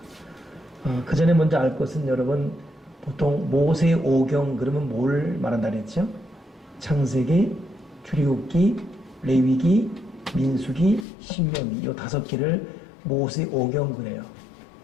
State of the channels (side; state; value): right; drops out; at 11.1 s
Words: 그 전에 먼저 알 것은, 여러분 보통 모세 오경 그러면 뭘 말한다 그랬죠? 창세기, 출애굽기, 레위기, 민수기, 신명기, 이 5개를 모세 오경 그래요.